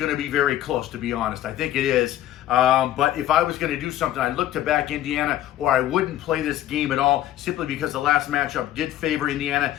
to be very close, to be honest. I think it is. But if I was going to do something, I'd look to back Indiana, or I wouldn't play this game at all, simply because the last matchup did favor Indiana.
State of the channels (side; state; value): right; quieter; 13.0 dB